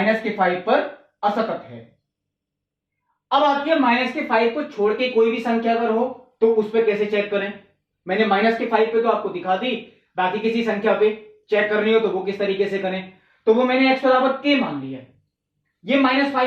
पर असतत है। अब आती है -5 को छोड़ के कोई भी संख्या अगर हो तो उस पर कैसे चेक करें। मैंने -5 पे तो आपको दिखा दी, बाकी किसी संख्या पे चेक करनी हो तो वो किस तरीके से करें। तो वो मैंने x बराबर k मान लिया, ये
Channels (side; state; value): both; identical; correlation 1.00